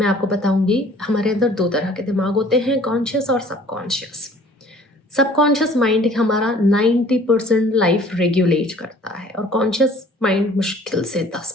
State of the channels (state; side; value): normal; both; correlation 0.53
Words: आपको बताऊंगी, हमारे अंदर 2 तरह के दिमाग होते हैं, कॉन्शियस और सबकॉन्शियस। सबकॉन्शियस माइंड हमारा 90% लाइफ रेगुलेट करता है और कॉन्शियस माइंड मुश्किल से